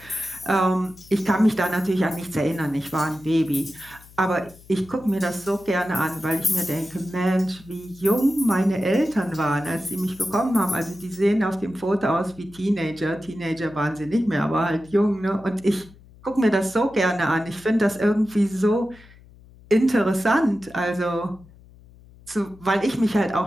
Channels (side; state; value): left; noise; hum, 24 dB below the sound